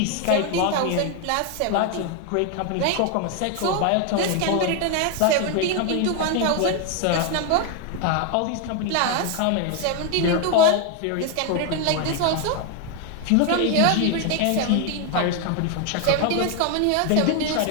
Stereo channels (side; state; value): both; different; correlation 0.01